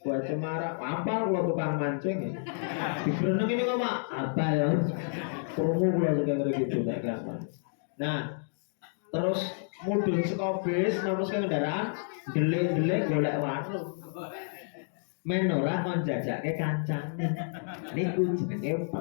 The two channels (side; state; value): right; silent; digital silence